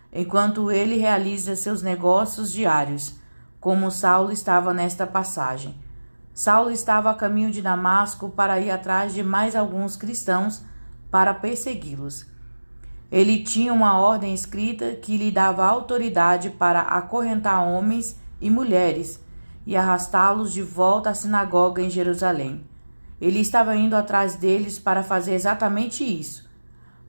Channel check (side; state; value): both; inverted; correlation -1.00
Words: enquanto ele realiza seus negócios diários, como Saulo estava nesta passagem. Saulo estava a caminho de Damasco para ir atrás de mais alguns cristãos para persegui-los. Ele tinha uma ordem escrita que lhe dava autoridade para acorrentar homens e mulheres e arrastá-los de volta à sinagoga em Jerusalém. Ele estava indo atrás deles para fazer exatamente isso.